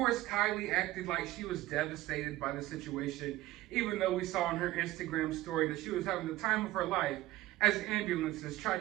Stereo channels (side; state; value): left; quieter; 16.8 dB